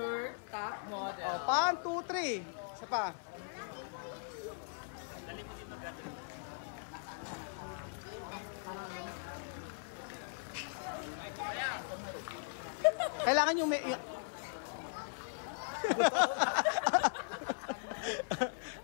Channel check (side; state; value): right; silent; 52 dB below the other